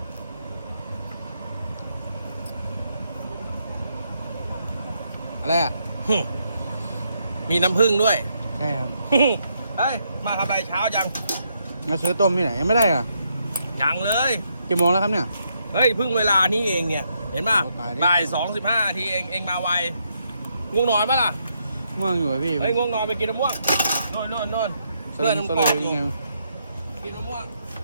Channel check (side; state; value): both; inverted; correlation -0.77